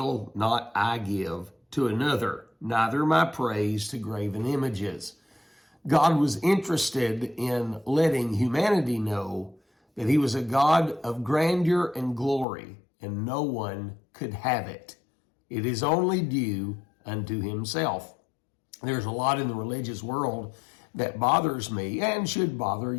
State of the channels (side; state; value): right; drops out; at 12.5 s